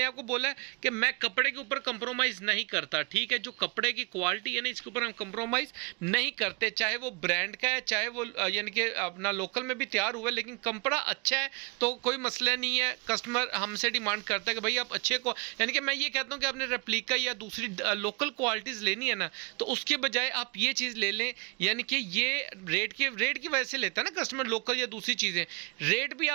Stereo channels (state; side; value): quieter; left; 31.5 dB